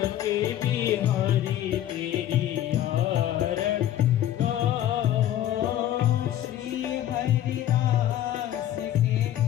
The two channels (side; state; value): right; quieter; 12.1 dB